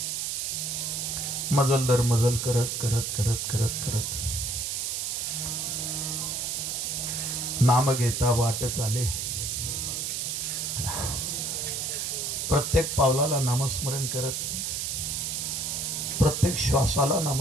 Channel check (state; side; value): noise; right; hiss, 2 dB below the sound